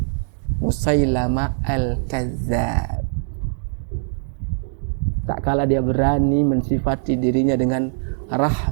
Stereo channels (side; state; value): left; silent; digital silence